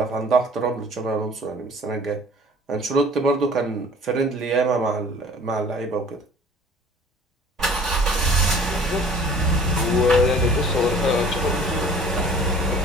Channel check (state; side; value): normal; both; correlation 0.49